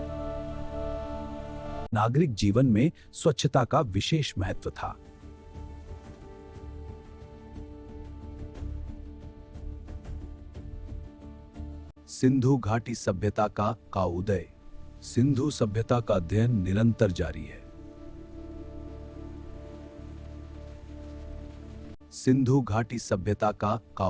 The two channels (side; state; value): both; identical; correlation 1.00